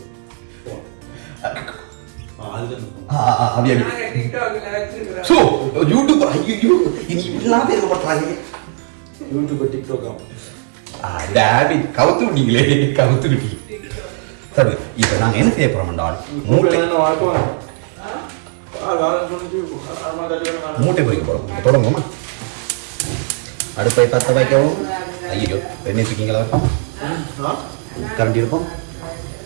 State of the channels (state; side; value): silent; left; 55 dB below the other